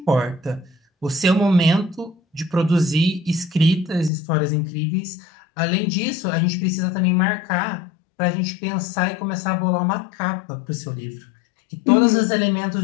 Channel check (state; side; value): drops out; right; at 4.1 s